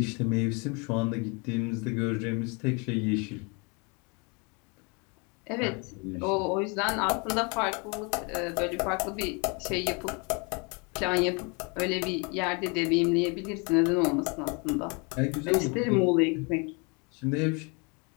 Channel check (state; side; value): quieter; right; 31.9 dB